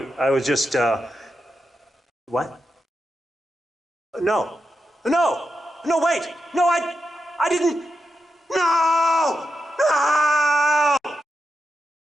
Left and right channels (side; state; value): both; normal; correlation 0.87